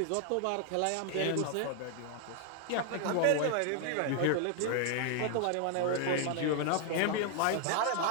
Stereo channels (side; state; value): both; different; correlation 0.00